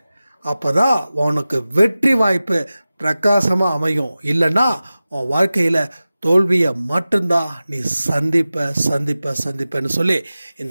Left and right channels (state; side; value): inverted; both; correlation -0.96